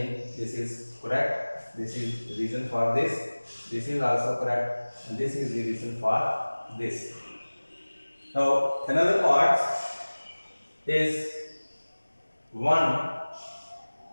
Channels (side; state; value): both; inverted; correlation -1.00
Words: this is correct, this is the reason for this is also correct, and this is the reason for this. Now another part is 1